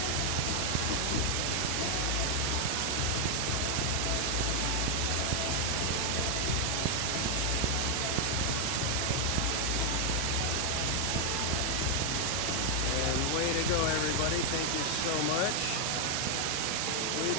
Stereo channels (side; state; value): both; different; correlation 0.00